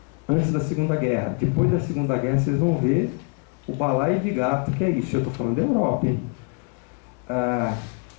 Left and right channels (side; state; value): right; quieter; 36.5 dB